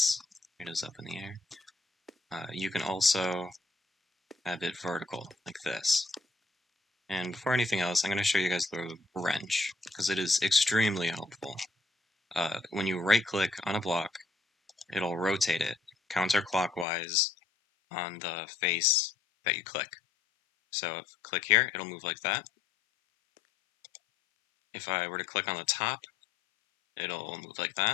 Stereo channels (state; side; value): drops out; right; at 16.9 s